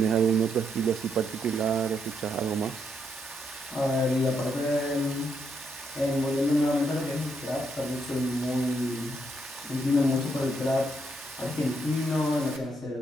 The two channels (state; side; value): normal; both; correlation 0.77